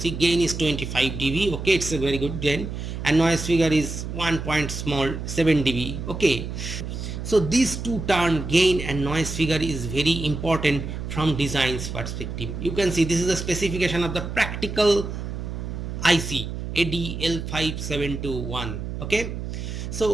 gain is 25 dB, okay, it's a very good gain, and noise figure is 1.7 dB, okay. So these two term gain and noise figure is very important from design's perspective. You can see this is a specification of the practical IC ADL5721, okay.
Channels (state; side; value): noise; right; hum, 6 dB below the sound